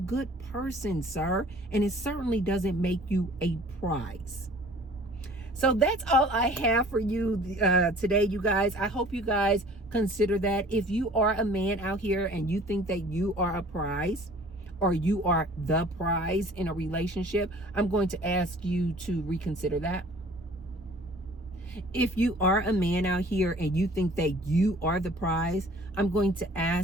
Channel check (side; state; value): both; normal; correlation 0.50